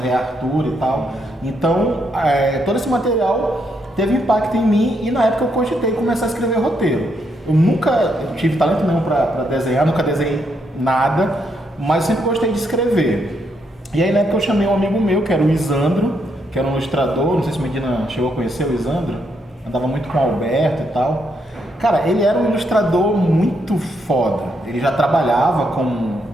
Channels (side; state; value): both; normal; correlation 0.77